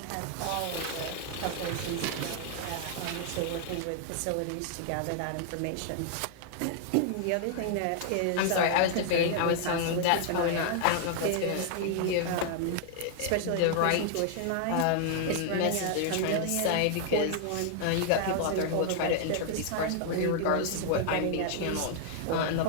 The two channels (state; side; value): different; both; correlation 0.00